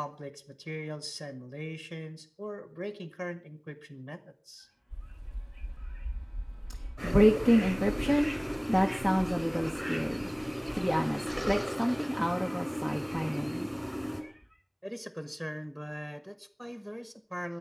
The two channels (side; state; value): both; identical; correlation 1.00